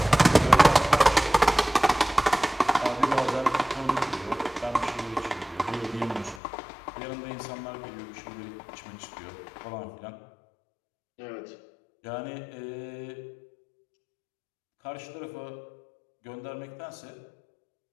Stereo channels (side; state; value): right; drops out; at 6.4 s